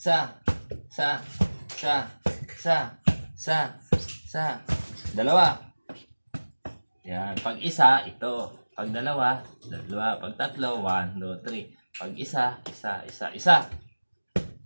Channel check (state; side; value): inverted; both; correlation -1.00